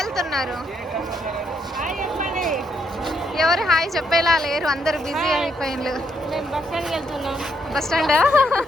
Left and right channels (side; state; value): both; normal; correlation 0.76